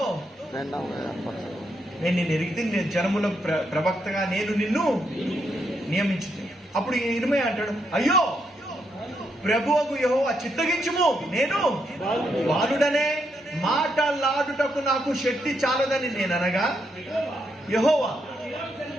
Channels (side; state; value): both; normal; correlation 0.79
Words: నేను నిన్ను ఎరిగితే, నేను జనముల ప్రవక్తగా నేను నిన్ను నియమించుతాను. అప్పుడు ఇర్మీయా అంటాడు, అయ్యో ప్రభువుకు యెహోవా చిత్తగించుము, నేను బాలుడనే మాటలాడుటకు నాకు శక్తి చాలదని నేను అనగా, యెహోవా